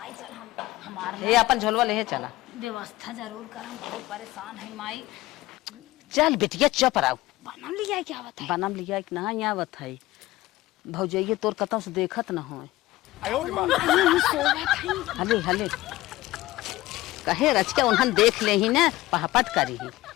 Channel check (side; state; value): right; quieter; 17.7 dB